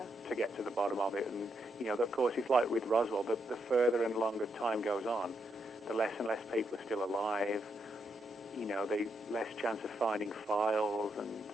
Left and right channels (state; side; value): normal; both; correlation 0.80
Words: to get to the bottom of it. And, of course, it's like with Roswell, the further and longer time goes on, the less and less people are still alive, the less chance of finding files, and,